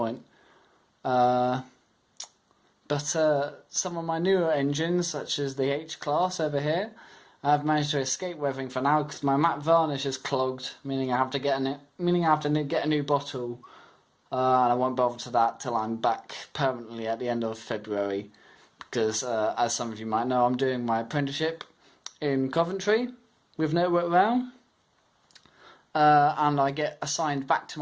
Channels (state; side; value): identical; both; correlation 1.00